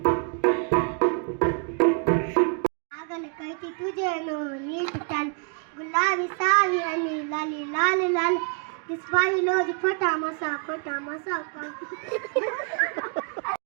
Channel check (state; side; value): quieter; left; 39.3 dB